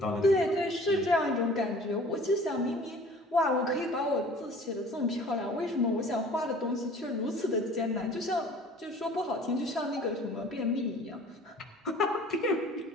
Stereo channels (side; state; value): both; normal; correlation 0.48